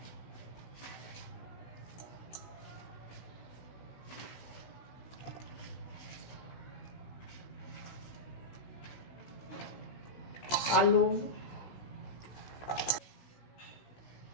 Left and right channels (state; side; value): late; right; 16 ms